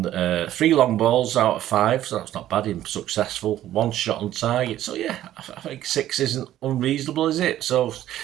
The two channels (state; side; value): quieter; left; 12.8 dB